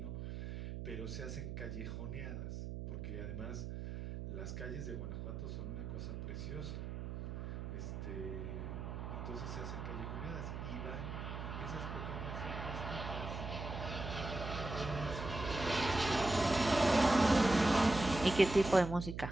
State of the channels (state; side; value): noise; right; hum, 6 dB below the sound